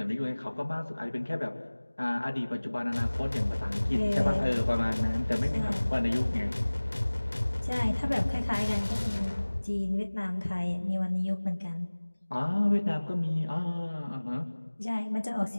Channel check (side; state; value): both; inverted; correlation -1.00